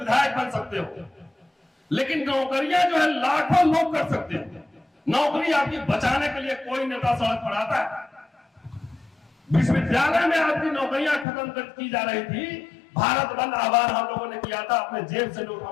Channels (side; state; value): right; drops out; at 11.2 s